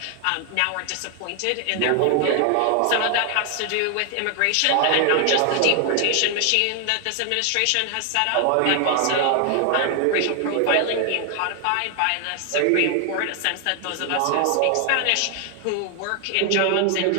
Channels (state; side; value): different; both; correlation 0.00